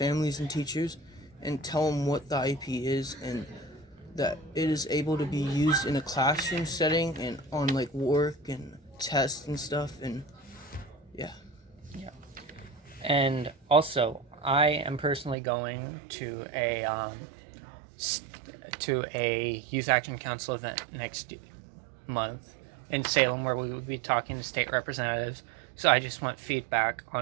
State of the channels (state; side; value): drops out; left; at 15.4 s